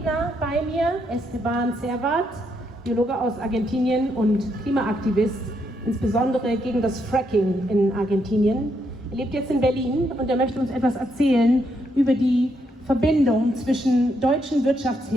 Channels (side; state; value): both; normal; correlation 0.77